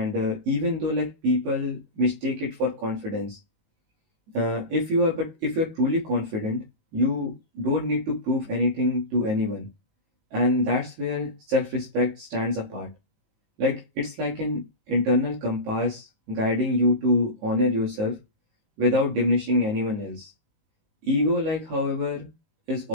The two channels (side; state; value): left; late; 19 ms